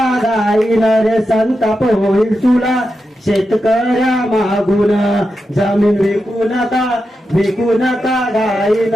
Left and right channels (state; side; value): normal; both; correlation 0.88